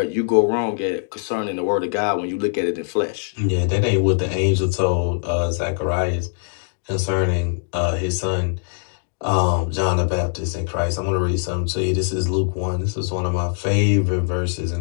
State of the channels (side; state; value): right; silent; digital silence